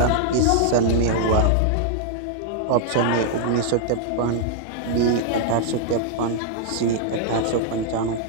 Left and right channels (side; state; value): both; different; correlation -0.01